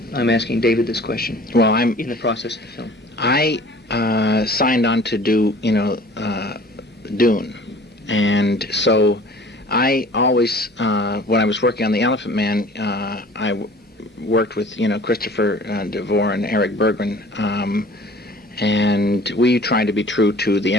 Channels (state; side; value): normal; both; correlation 0.48